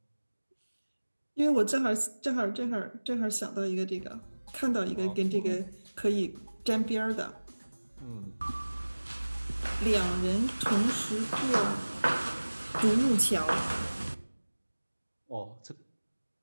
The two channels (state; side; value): inverted; both; correlation -1.00